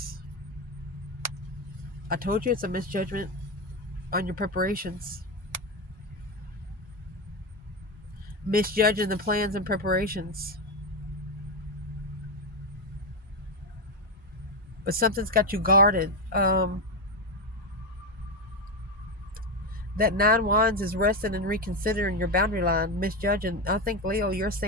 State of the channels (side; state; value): both; normal; correlation 0.11